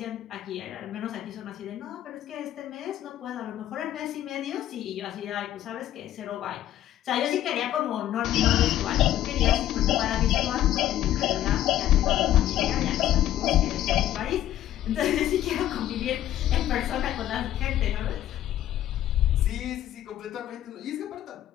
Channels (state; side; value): quieter; right; 12.5 dB